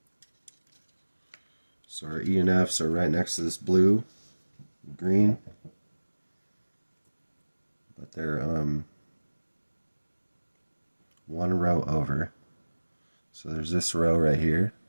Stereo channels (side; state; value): both; inverted; correlation -1.00